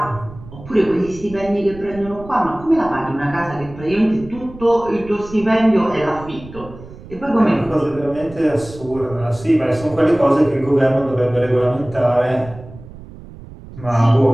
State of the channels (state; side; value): noise; right; rumble, 17 dB below the sound